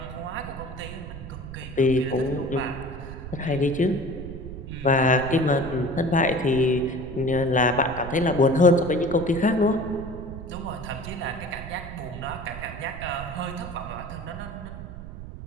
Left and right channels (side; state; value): right; noise; rumble, 11 dB below the sound